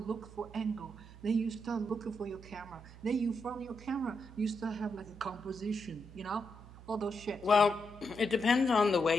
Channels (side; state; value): right; noise; hum, 17 dB below the sound